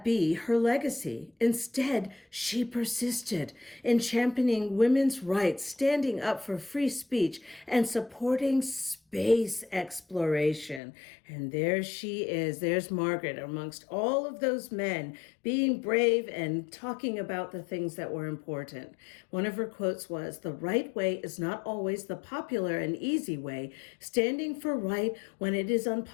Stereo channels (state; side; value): drops out; right; at 10.8 s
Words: be her legacy. Instead, she persisted in championing women's rights, standing up for free speech, and supporting space exploration. And there she is. There's Margaret amongst all of those men being brave and talking about the things that were important. One of her quotes was, "The right way is not always the popular and easy way. Standing for right when it is